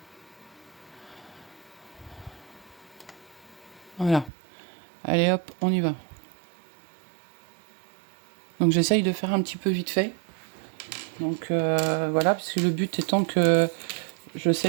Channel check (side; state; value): left; drops out; at 4.3 s